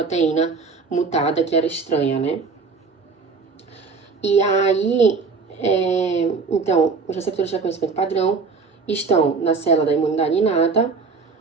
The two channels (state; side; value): quieter; left; 4.7 dB